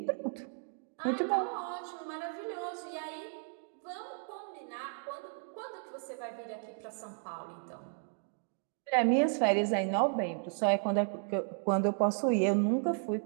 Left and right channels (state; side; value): silent; left; 55 dB below the other